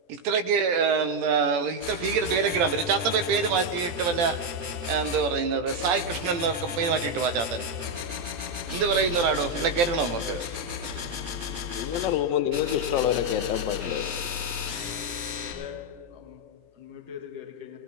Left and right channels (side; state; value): left; late; 18 ms